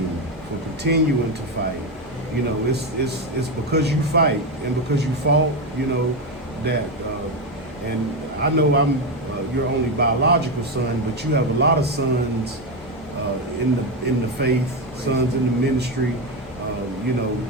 for continuing to fight. It's because you fight and because you fought, that, and I know I'm your only biological son, but you have a lot of sons in the faith, sons in the ministry,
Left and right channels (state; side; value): normal; both; correlation 0.11